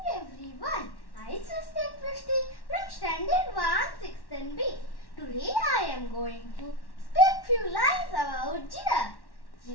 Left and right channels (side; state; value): right; late; 1.1 ms